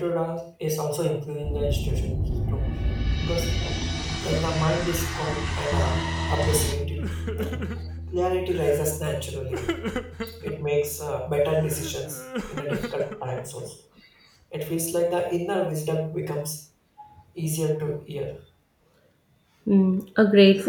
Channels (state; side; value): identical; both; correlation 1.00